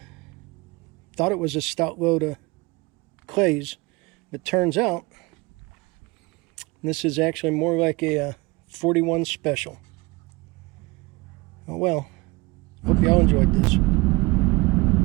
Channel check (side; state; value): left; quieter; 24.2 dB